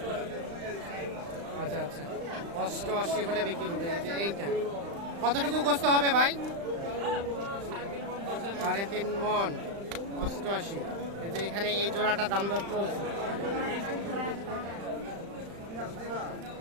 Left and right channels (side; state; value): left; late; 35 ms